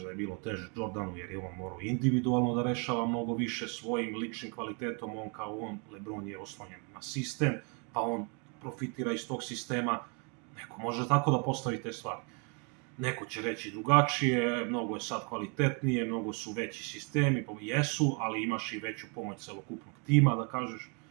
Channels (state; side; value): quieter; left; 35.4 dB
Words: da je bilo teže Jordanu jer je on morao individualno da rešava mnogo više svojim ličnim kvalitetom, LeBron je oslonjen na sistem, pa on profitira iz tog sistema, neko može tako da postavi te stvari. Neko će reći drugačije, mnogo je sad kvalitetnije, mnogo su veći sistemi, jesu, ali imaš i veću pomoć celokupnog tima, da kažeš,